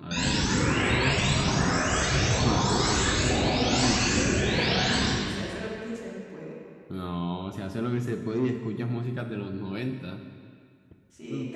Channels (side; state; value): both; identical; correlation 1.00